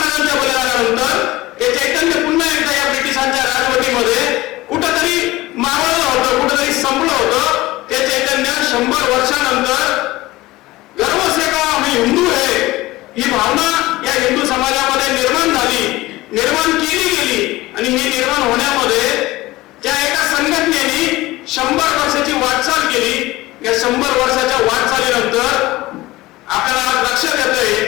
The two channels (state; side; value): quieter; right; 18.8 dB